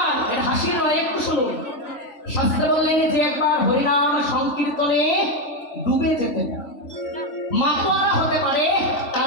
এটা হাসির নয়, একটু শুনুন। শাস্ত্রে বললেন যে একবার হরিনাম সংকীর্তনে ডুবে যেতে পারে, মাতোয়ারা হতে পারে,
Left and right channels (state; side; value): late; right; 3.5 ms